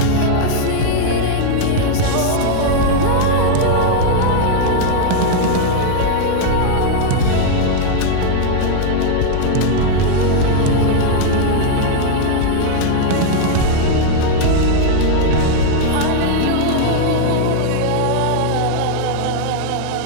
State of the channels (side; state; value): both; different; correlation 0.00